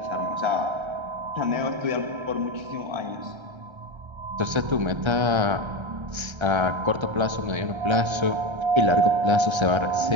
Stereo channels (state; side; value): late; left; 1.3 ms